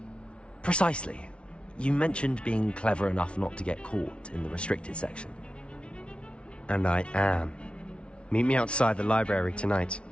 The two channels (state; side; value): late; right; 0.059 ms